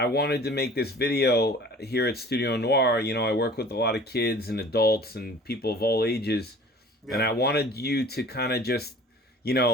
wanted to make this video here at Studio Noir. I work with a lot of kids and adults and people of all ages. Yeah. And I wanted you to kind of just,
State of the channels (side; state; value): both; normal; correlation 0.46